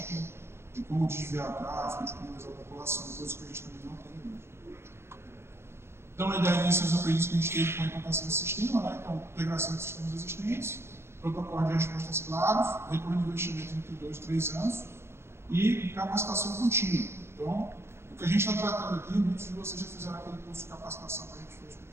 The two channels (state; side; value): late; left; 0.12 ms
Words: de como desviar tráfego, de como usar a população, coisa que a gente também não tem hoje. Então, a ideia disso é os aprendizados que a gente teve com a implantação do sistema, né? Então, integração de sistemas existentes, protocolo de respostas claros, retorno de investimento entre 2 e 3 anos e capacitação contínua. Então, o que a gente está tratando aqui, muitos de vocês já fizeram aquele curso de capacitação que a gente fez com o